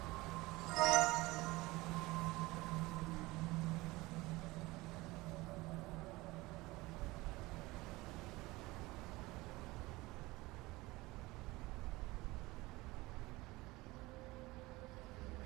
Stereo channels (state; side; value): quieter; left; 21.0 dB